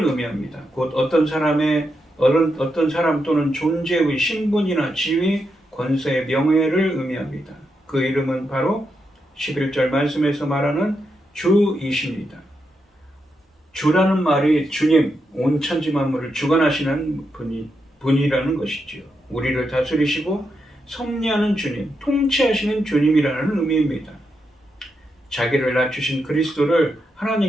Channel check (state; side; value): normal; both; correlation 0.84